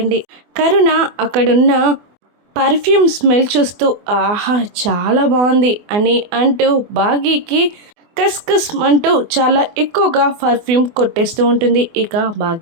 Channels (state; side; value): late; left; 24 ms